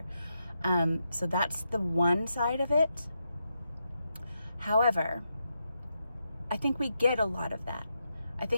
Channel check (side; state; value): both; inverted; correlation -0.84